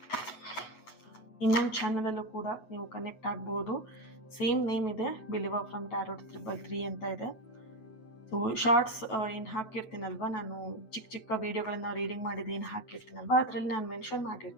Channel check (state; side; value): late; right; 8.3 ms